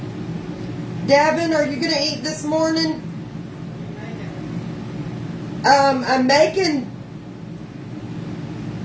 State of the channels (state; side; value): identical; both; correlation 1.00